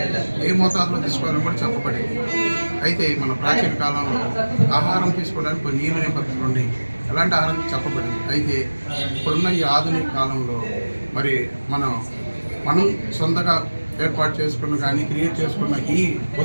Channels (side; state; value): both; inverted; correlation -1.00